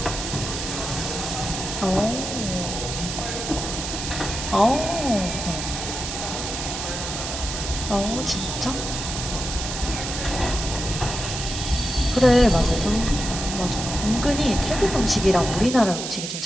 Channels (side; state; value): right; noise; hiss, 5 dB below the sound